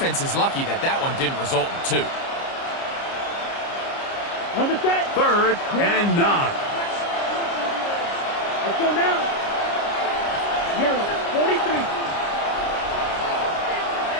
is lucky that that one didn't result in 2. 3rd and 9. Let's go now. Yellow, 43.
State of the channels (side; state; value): right; late; 30 ms